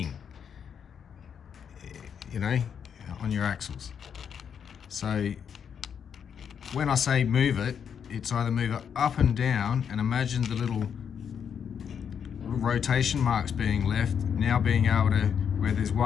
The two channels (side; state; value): right; quieter; 7.6 dB